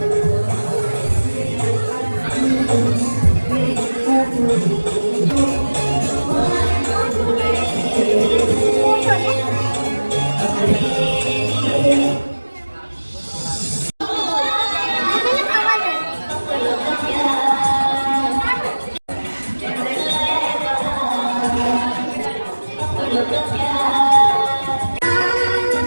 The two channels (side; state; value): both; inverted; correlation -1.00